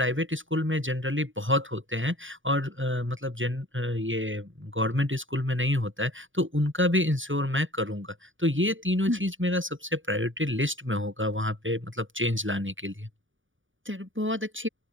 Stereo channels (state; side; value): late; left; 0.57 ms